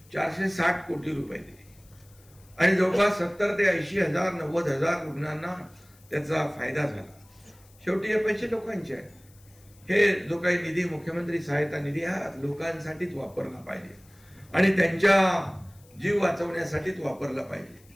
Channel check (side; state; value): left; noise; hiss, 28 dB below the sound